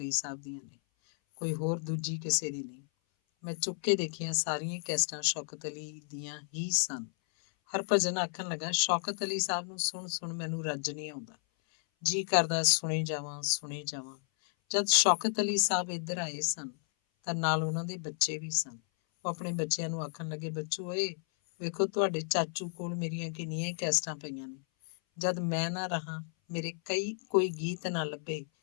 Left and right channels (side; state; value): right; silent; 56 dB below the other